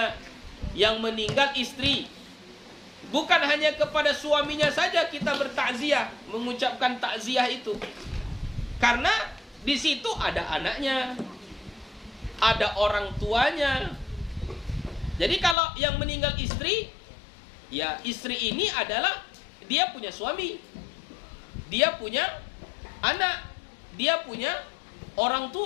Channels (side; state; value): right; drops out; at 15.6 s